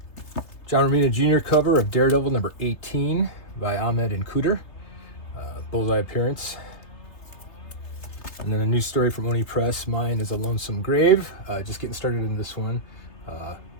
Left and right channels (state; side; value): late; right; 3.3 ms